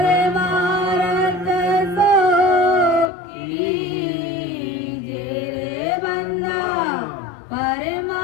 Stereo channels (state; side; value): drops out; right; at 3.1 s